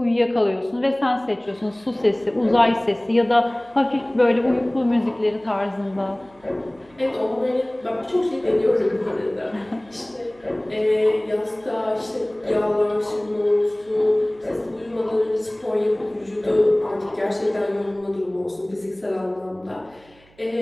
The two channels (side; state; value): right; noise; hum, 29 dB below the sound